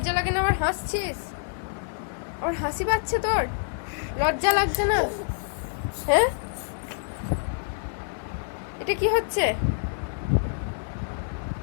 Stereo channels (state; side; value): silent; right; digital silence